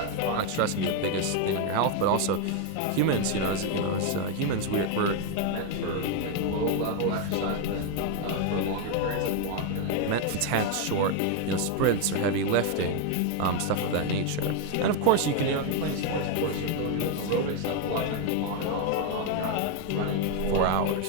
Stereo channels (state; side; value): different; both; correlation 0.01